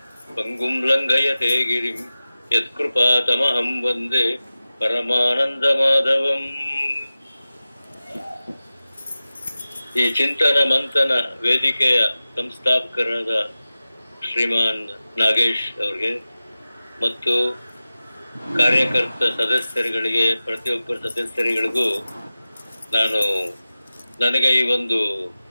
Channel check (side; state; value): both; inverted; correlation -0.95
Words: ಪಂಗುಂ ಲಂಘಯತೆ ಗಿರಿಂ ಯತ್ಕೃಪಾತಮಹಂ ವಂದೇ ಪರಮಾನಂದಮಾಧವಂ. ಈ ಚಿಂತನ ಮಂಥನ ವೇದಿಕೆಯ ಸಂಸ್ಥಾಪಕರಾದ ಶ್ರೀಮಾನ್ ನಾಗೇಶ್ ಅವರಿಗೆ ಮತ್ತು ಕಾರ್ಯಕರ್ತ ಸದಸ್ಯರುಗಳಿಗೆ, ಪ್ರತಿಯೊಬ್ಬರ ಸದಸ್ಯರುಗಳಿಗೂ ನನಗೆ ಈ ಒಂದು